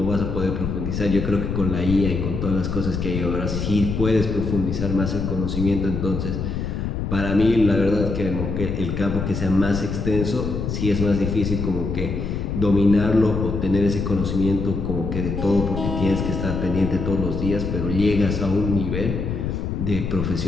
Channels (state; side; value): noise; left; rumble, 3 dB below the sound